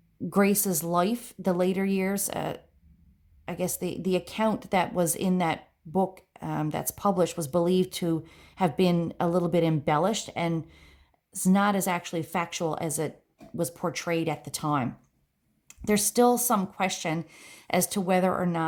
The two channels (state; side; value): identical; both; correlation 1.00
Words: Grace's life, the later years, I guess the account that was in that book that's published was believed to have been a little bit embellished and it's not as actually factual as it was portrayed at the time. There's still some question as to whether or